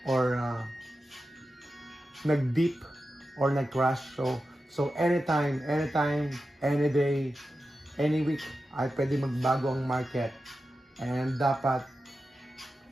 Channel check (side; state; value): both; normal; correlation 0.92